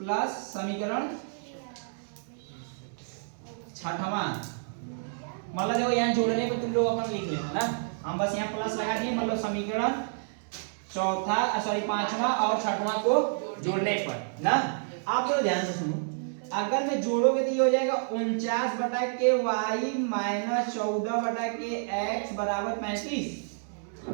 समीकरण 6वां, मतलब देखो यहाँ जोड़ने को तुम लोग अपन लिख लेना ना, हम बस यहाँ प्लस लगा दिए, मतलब समीकरण 5वां और 6वां को जोड़ने पर ना। आप लोग ध्यान से सुनो, अगर मैं जोड़ोगे तो ये हो जाएगा 49 बटा के y - 14 बटा के x बराबर 35,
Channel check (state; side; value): silent; left; digital silence